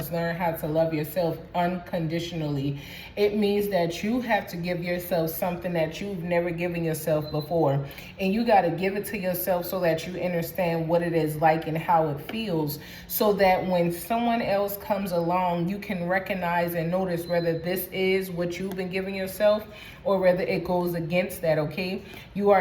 learn how to love yourself unconditionally. It means that you have to give yourself something that you've never given yourself before. And you got to give it to yourself so that you understand what it is like and how it feels. So that when someone else comes along, you can recognize and notice whether this is what you've been giving yourself or whether it goes against that, okay? You are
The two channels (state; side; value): identical; both; correlation 1.00